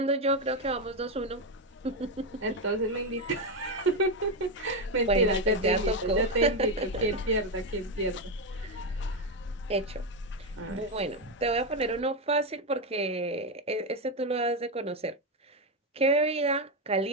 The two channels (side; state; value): both; normal; correlation 0.08